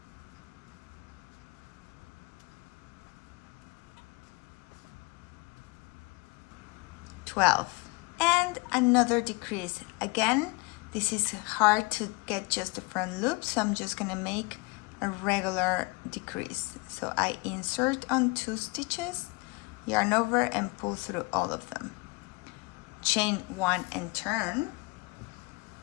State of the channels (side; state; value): right; quieter; 27.2 dB